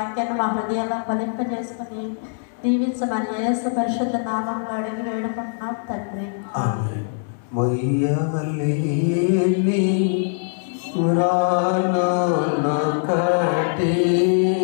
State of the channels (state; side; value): silent; right; digital silence